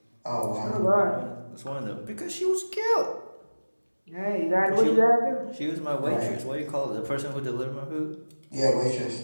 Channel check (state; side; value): inverted; both; correlation -1.00